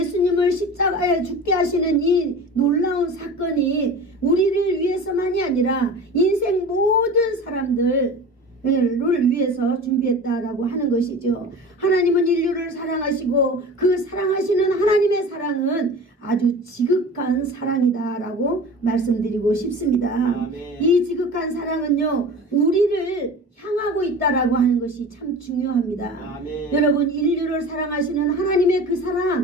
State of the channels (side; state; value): both; normal; correlation 0.36